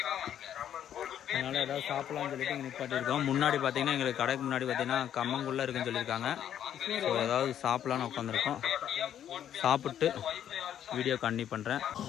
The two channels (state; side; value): quieter; right; 10.2 dB